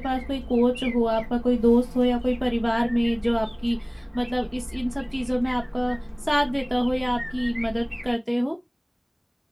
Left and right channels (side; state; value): both; identical; correlation 1.00